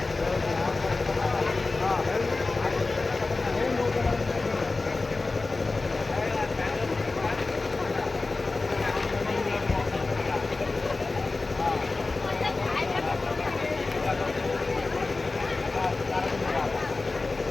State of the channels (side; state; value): right; quieter; 3.5 dB